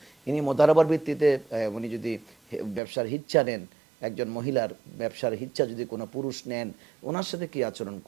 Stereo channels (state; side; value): drops out; left; at 2.8 s